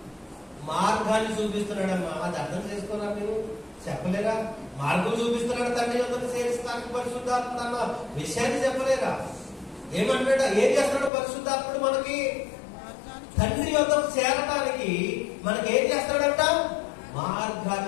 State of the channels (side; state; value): right; drops out; at 11.1 s